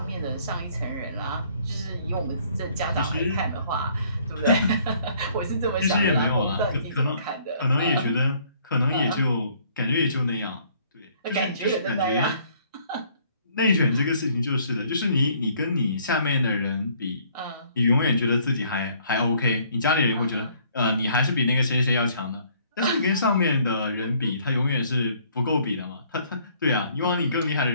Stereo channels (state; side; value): inverted; both; correlation -0.61